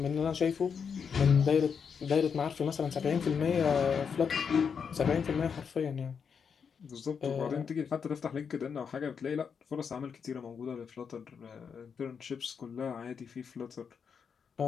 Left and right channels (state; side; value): quieter; right; 6.5 dB